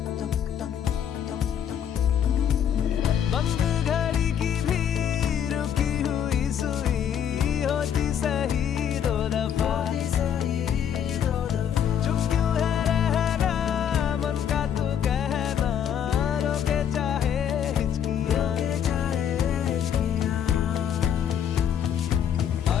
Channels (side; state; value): right; quieter; 8.9 dB